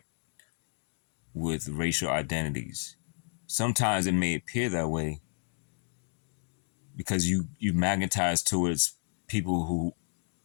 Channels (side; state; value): right; silent; digital silence